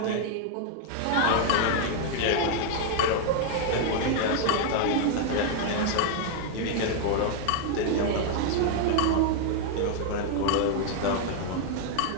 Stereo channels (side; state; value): both; different; correlation 0.00